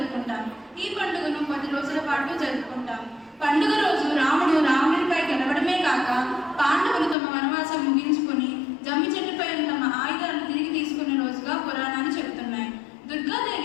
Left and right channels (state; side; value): drops out; right; at 7.2 s